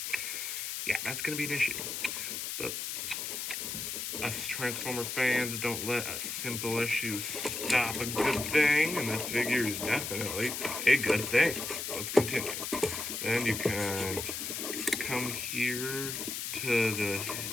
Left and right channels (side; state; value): left; noise; hiss, 4 dB below the sound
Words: yeah, that's going to be an issue. But us Transformer fans don't let a simple issue stop a good thing, and this figure is definitely a good thing. So let's continue. Then you can come here to